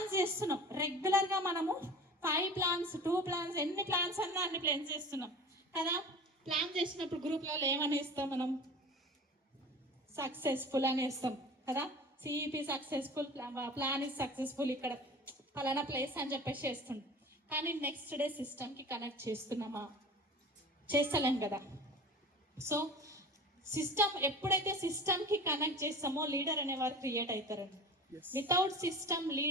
చేస్తున్నాం రెగ్యులర్గా. మనము 5 ప్లాన్స్, 2 ప్లాన్స్, ఎన్ని ప్లాన్స్ అన్నా అన్ని ప్లాన్స్ చేస్తున్నాం కదా. ప్లాన్ చేసినప్పుడు గ్రూప్లలో ఏమని ఇస్తాం మనం, సక్సెస్ఫుల్ అని ఇస్తాం కదా. CEP successful, plan is successful, ఇక్కడ ఫలానా ప్లేస్ అని చెప్పేసి చేస్తుంటాం. కానీ నెక్స్ట్ డే సిస్టమ్కి కనెక్ట్ చేస్తున్నామా, చేస్తలేం కదా. సో సిస్టమ్ ఎప్పుడైతే సిస్టమ్కి కనెక్ట్ చేస్తామో లీడర్ అనేవారు క్రియేట్ అవుతారండి. వితౌట్ సిస్టమ్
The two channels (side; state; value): both; normal; correlation 0.38